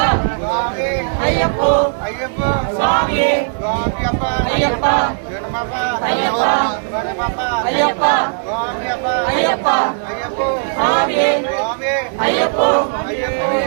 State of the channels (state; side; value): silent; left; 64 dB below the other